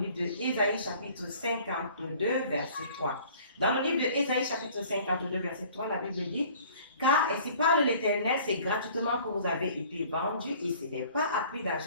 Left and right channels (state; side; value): inverted; both; correlation -0.51